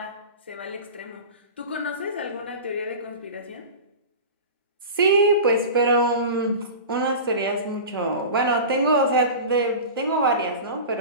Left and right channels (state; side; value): inverted; both; correlation -0.32